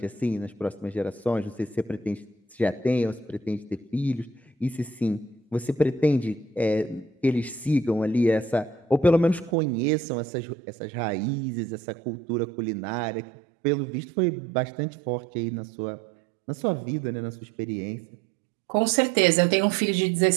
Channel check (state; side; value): drops out; left; at 9.6 s